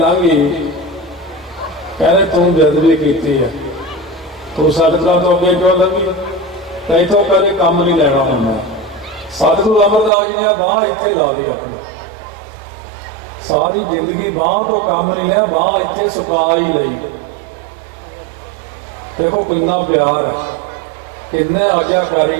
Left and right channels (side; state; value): left; drops out; at 10.1 s